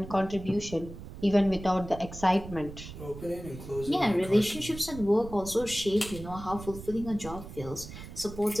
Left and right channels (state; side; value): noise; right; rumble, 13 dB below the sound